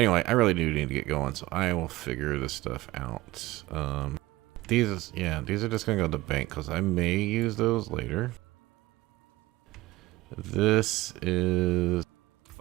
I really do need to get going, so I will figure this stuff out. These are just gonna go to the bank because I may use those later. This is,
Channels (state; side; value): quieter; left; 18.5 dB